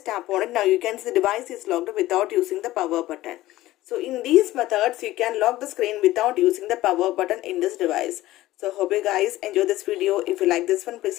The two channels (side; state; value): right; quieter; 16.3 dB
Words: tap on it. Now you can see the device is locked without using the power button. So in these methods you can lock the screen without using the power button in this device. So hope you guys enjoy this video. If you like this one,